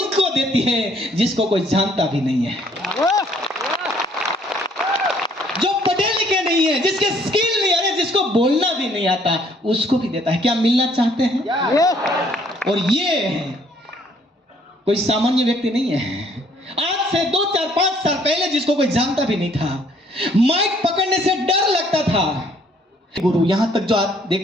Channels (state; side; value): normal; both; correlation 0.63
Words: देती है जिसको कोई जानता भी नहीं है, जो पढ़े लिखे नहीं है, जिसके स्किल नहीं है, जिसको बोलना भी नहीं आता, उसको भी देता है। क्या मिलना चाहते हैं? और ये कोई सामान्य व्यक्ति नहीं है। आज से 2, 4, 5 साल पहले जिसको कोई जानता भी नहीं था, माइक पकड़ने से डर लगता था। गुरु, यहां तक जो आप